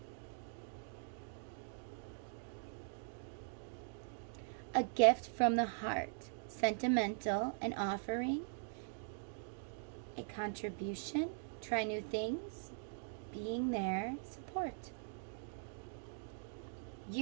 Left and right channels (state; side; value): silent; left; digital silence